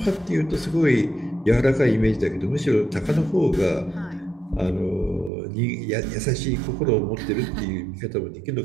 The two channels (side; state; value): left; drops out; at 5.3 s